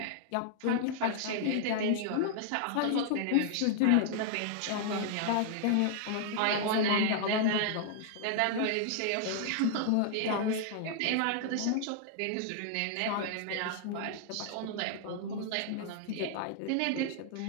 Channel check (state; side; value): different; both; correlation 0.00